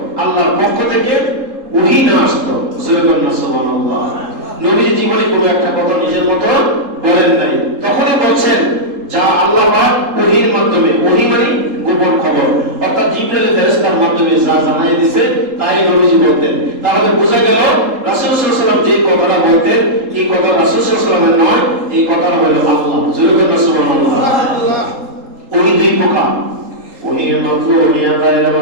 আল্লাহর পক্ষ থেকে ওহী না আসতো। সুবহানাল্লাহ। নবী জীবনে কোনো একটা কথা নিজের মতো বলেন নাই, তখনই বলছেন যা আল্লাহ পাক ওহীর মাধ্যমে, ওহী মানে গোপন খবর, অর্থাৎ জিবরাইল ফেরেশতার মাধ্যমে যা জানাই দিয়েছে তাই নবীজি বলতেন। তাহলে বোঝা গেল রাসূল সাল্লাল্লাহু আলাইহি ওয়াসাল্লাম যে কথাটা বলতেন এই কথা রাসূল সাল্লাল্লাহু আলাইহি ওয়াসাল্লামের নয়, এই কথাটা হলো আল্লাহ। সুবহানাল্লাহ। ওহী দুই প্রকার, ওহীর মাত্র, ওহীর গায়রে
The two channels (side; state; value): left; late; 3.8 ms